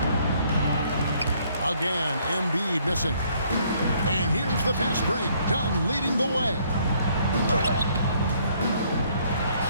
Again, Embiid missing. And here's the fast break. Dunn leading the way.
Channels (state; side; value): inverted; both; correlation -0.66